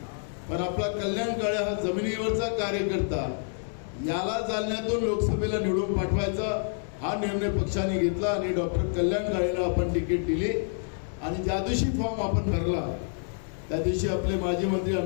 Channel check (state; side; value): silent; right; 59 dB below the other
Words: पण आपला कल्याण काळे हा जमिनीवरचा कार्यकर्ता, याला जालन्यातून लोकसभेला निवडून पाठवायचा हा निर्णय पक्षाने घेतला आणि डॉक्टर कल्याण काळेला आपण तिकीट दिली। आणि ज्या दिवशी फॉर्म आपण भरला त्या दिवशी आपले माजी मंत्री